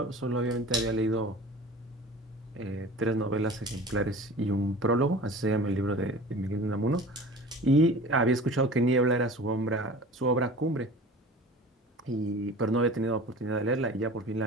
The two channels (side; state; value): both; normal; correlation 0.40